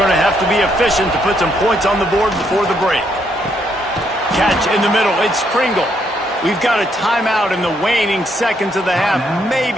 to have to be efficient to put some points on the board before the break. Catch in the middle. It's Pringle. We've got a timeout in the waning seconds of the half.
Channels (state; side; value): normal; both; correlation 0.74